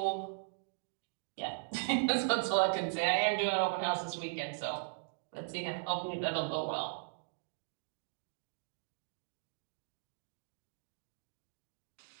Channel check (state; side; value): silent; left; digital silence